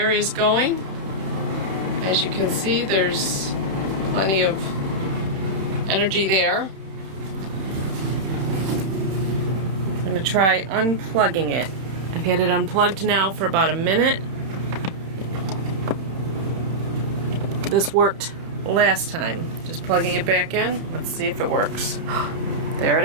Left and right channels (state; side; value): late; left; 31 ms